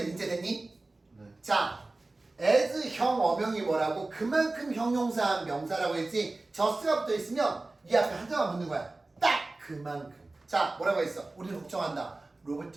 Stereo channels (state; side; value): quieter; left; 3.1 dB